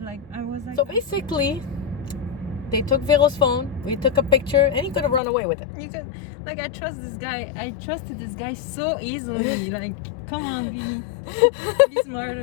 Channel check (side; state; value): right; drops out; at 5.2 s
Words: Like I was like. So basically, they took Vero's phone. We took a picture, and he could have run away with it. You could, like, I trust this guy. I trusted this guy so easily. Like, come on, be